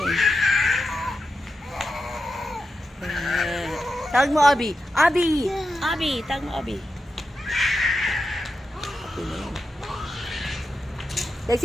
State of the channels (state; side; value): normal; both; correlation 0.89